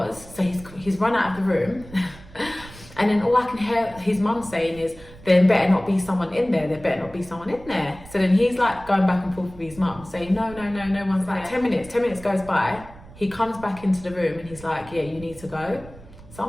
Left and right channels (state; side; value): noise; right; rumble, 19 dB below the sound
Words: So he's run out of the room. And then all I can hear his mum saying is, there better not be someone in there, there better not be someone in there. So then he's like going back and forth with his mum saying, no one's there. 10 minutes goes by. He comes back into the room and he's like, yeah, you need to go. So